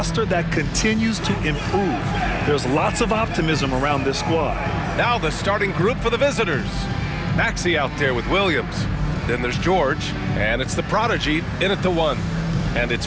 that continues to improve. There's lots of optimism around this squad. Now the starting group for the visitors. Maxey out there with Williams. Then there's George, and it's the prodigy in at the 1. And it's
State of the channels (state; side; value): identical; both; correlation 1.00